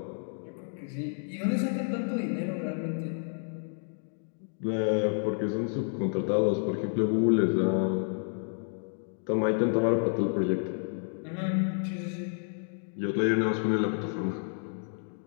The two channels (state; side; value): silent; right; 58 dB below the other